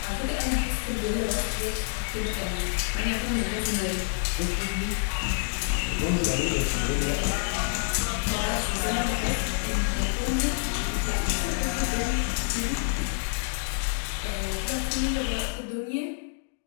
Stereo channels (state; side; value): silent; right; digital silence